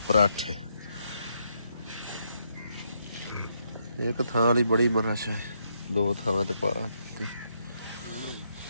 पराठे। एक थां ली बड़ी मरच है, 2 थां ते पा दी।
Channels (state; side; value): inverted; both; correlation -0.78